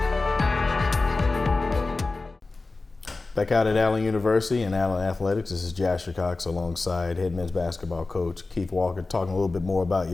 Back out at Allen University and Allen Athletics, this is Jasher Cox alongside head men's basketball coach Keith Walker, talking a little bit more about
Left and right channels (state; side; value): quieter; right; 3.5 dB